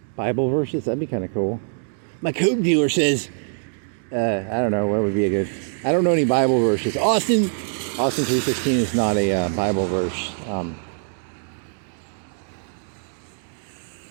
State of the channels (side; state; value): left; silent; digital silence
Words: Bible verses. That'd be kind of cool. My coke dealer says, I don't know, what would be a good... I don't know any Bible verses. Austin 3:16 is not a Bible verse.